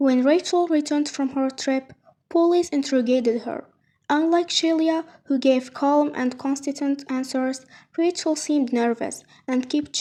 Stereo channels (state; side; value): identical; both; correlation 1.00